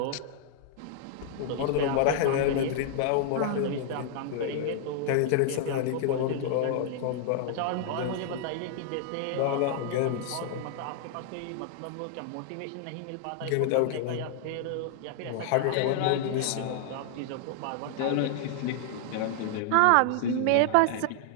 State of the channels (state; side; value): different; both; correlation 0.00